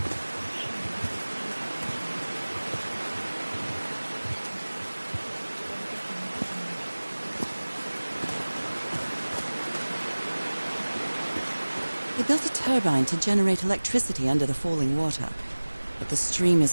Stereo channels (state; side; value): inverted; both; correlation -1.00